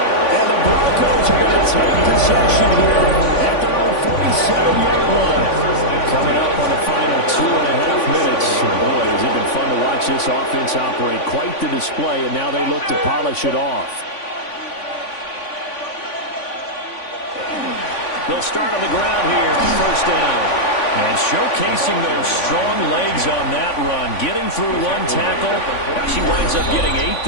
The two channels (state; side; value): late; right; 3.5 ms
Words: the Broncos are going to take possession here at their own 47-yard line. Coming up on the final 2.5 minutes. Boy, has it been fun to watch this offense operate. Quite the display, and now they look to polish it off. They'll start on the ground here on first down. And showcasing those strong legs on that run. Getting through one tackle. Now she winds up getting 8